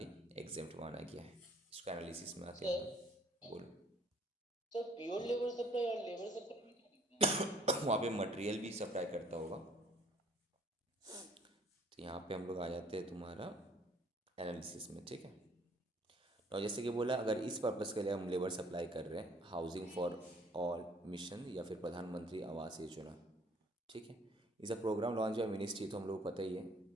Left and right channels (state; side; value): normal; both; correlation 0.59